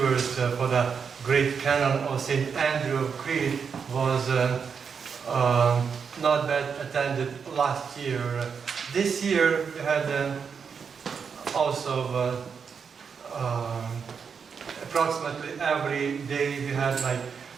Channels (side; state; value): left; quieter; 6.3 dB